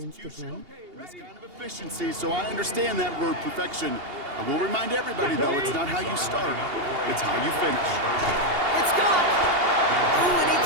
this kind of efficiency, so I understand that word perfection. I will remind everybody, though, it's not how you start, it's how you finish. It's gone! Ooh, and he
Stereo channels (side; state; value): left; late; 2.8 ms